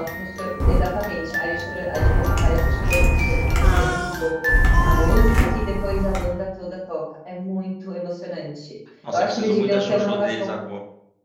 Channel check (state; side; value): identical; both; correlation 1.00